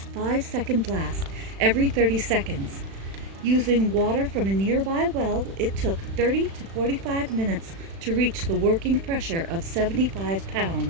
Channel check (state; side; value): late; left; 36 ms